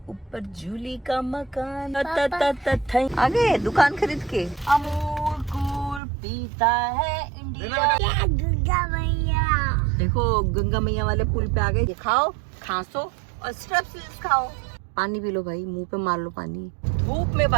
ऊपर जूली का मकान। आगे दुकान खरीद के अमूल कूल पीता है इंडिया। गंगा मैया देखो, गंगा मैया वाले पुल पे आ गए। खाओ, खांसो और स्ट्रेप्सिल्स खाओ। पानी पी लो भाई, मुंह पे मार लो पानी। धूप में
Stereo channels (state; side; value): drops out; left; at 6.0 s